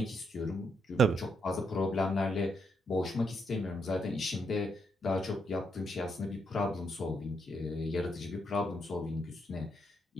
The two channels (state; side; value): normal; both; correlation 0.78